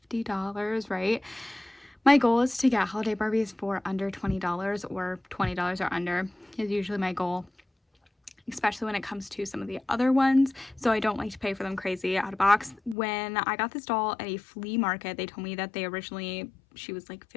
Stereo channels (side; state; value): right; drops out; at 13.0 s